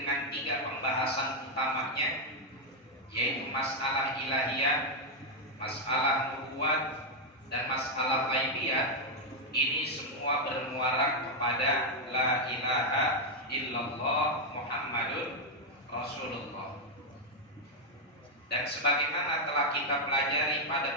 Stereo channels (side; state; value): both; normal; correlation 0.01